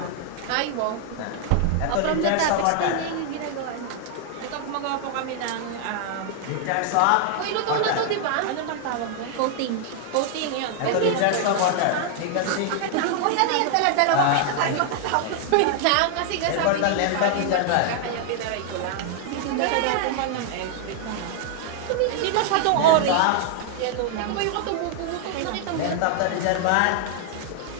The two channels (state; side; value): different; both; correlation 0.00